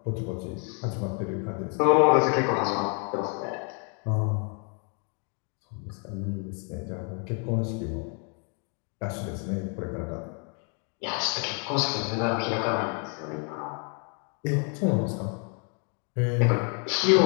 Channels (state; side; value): quieter; right; 38.7 dB